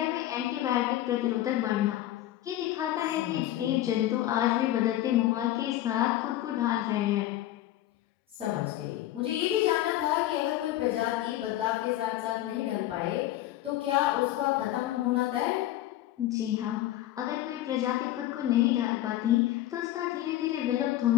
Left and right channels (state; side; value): quieter; right; 14.1 dB